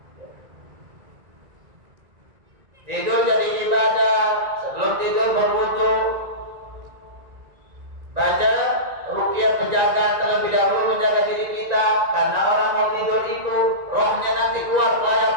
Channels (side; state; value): left; late; 1.9 ms